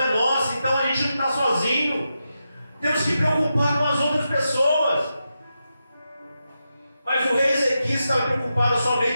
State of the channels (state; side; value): inverted; both; correlation -0.88